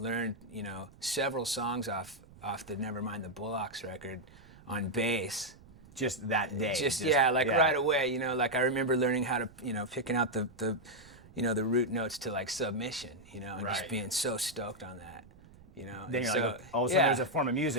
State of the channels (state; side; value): noise; right; rumble, 23 dB below the sound